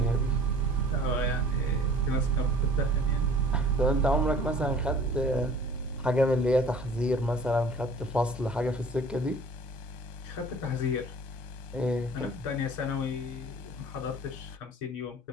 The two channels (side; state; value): both; normal; correlation 0.48